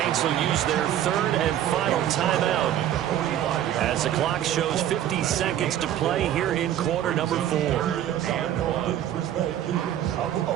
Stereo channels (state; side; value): quieter; left; 11.5 dB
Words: will use their third and final timeout as the clock shows 50 seconds to play here in quarter number 4.